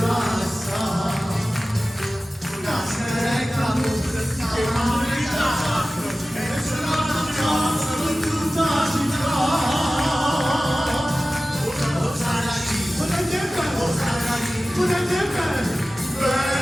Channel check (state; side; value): normal; both; correlation 0.96